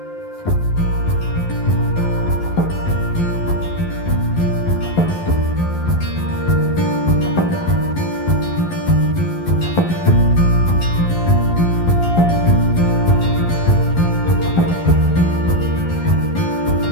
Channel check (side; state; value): right; late; 11 ms